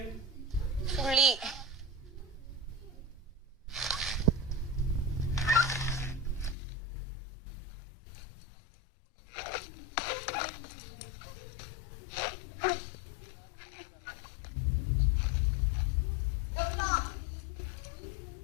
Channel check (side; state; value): right; drops out; at 6.6 s